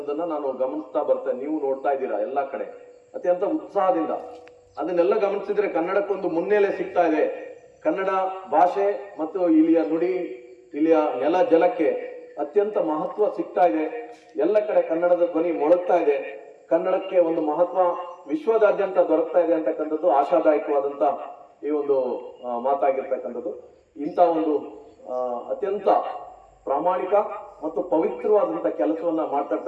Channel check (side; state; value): both; identical; correlation 1.00